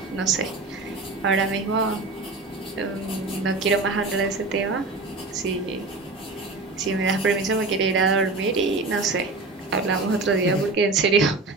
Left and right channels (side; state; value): left; quieter; 3.5 dB